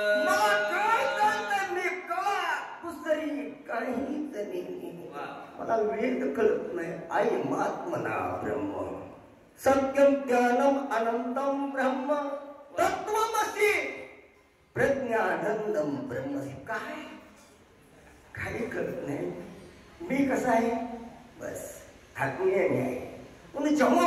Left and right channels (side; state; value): both; identical; correlation 1.00